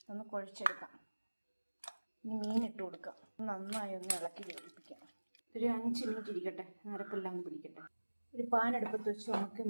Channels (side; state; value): both; inverted; correlation -1.00